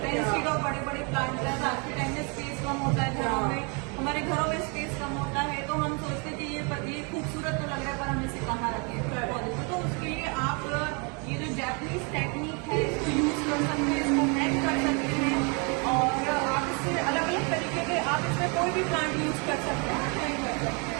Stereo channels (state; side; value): quieter; left; 34.0 dB